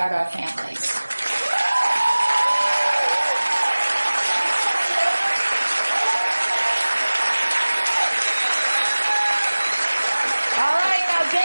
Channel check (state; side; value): inverted; both; correlation -1.00